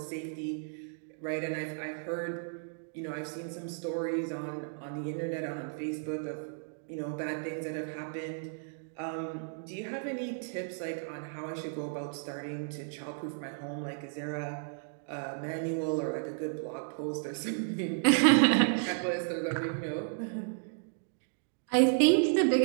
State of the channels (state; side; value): silent; left; digital silence